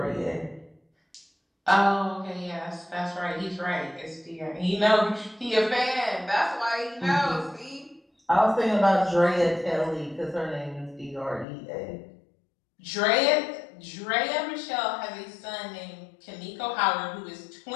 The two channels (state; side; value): drops out; right; at 11.5 s